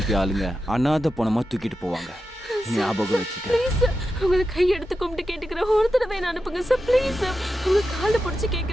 ஆளுங்க அனாதை பணமா தூக்கிட்டு போவாங்க. ஞாபகம் வச்சுக்க. ப்ளீஸ் சார், உங்களை கையெடுத்து கும்பிட்டு கேட்டுக்கிறேன். ஒரு தடவை என்ன அனுப்புங்க சார். Please sir. உங்க காலை பிடிச்சி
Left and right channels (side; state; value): both; normal; correlation 0.90